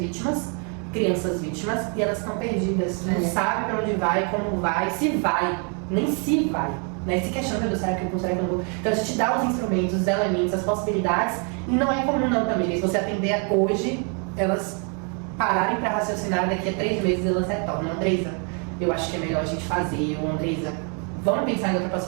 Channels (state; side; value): quieter; left; 38.6 dB